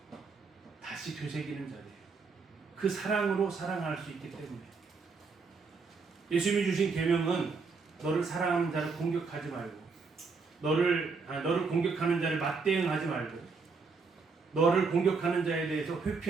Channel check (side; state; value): left; quieter; 4.7 dB